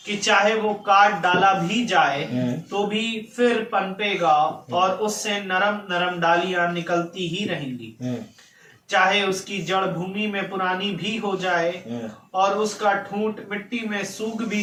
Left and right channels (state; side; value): identical; both; correlation 1.00